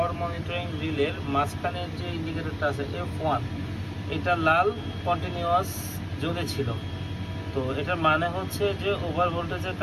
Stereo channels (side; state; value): both; identical; correlation 1.00